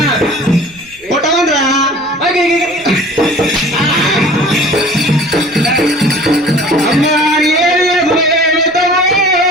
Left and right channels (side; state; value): right; noise; rumble, 27 dB below the sound